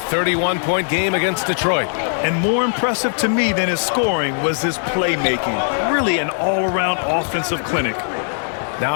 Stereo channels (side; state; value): right; silent; digital silence